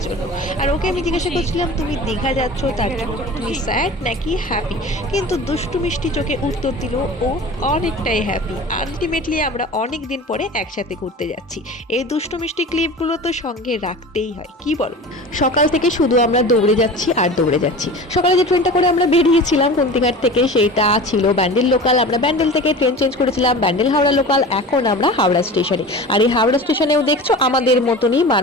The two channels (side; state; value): both; normal; correlation 0.35